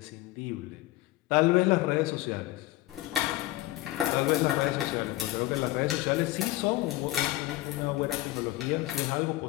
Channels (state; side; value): quieter; right; 17.2 dB